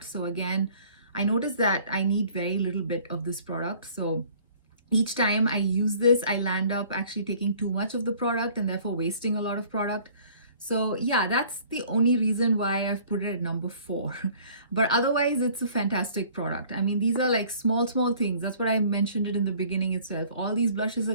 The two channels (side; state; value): both; inverted; correlation -0.54